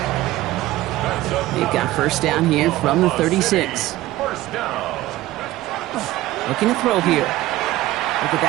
They've got first down here from the 36. First down. Looking to throw here. Look at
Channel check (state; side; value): quieter; left; 16.4 dB